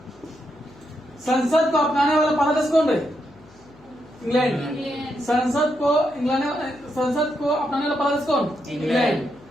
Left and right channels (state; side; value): noise; left; hum, 26 dB below the sound